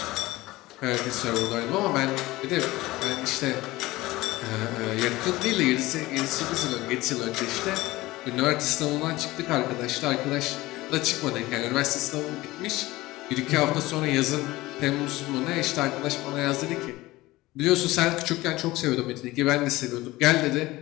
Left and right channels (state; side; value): quieter; right; 18.9 dB